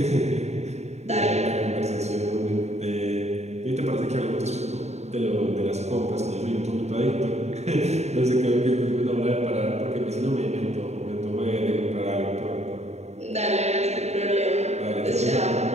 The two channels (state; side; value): late; left; 0.32 ms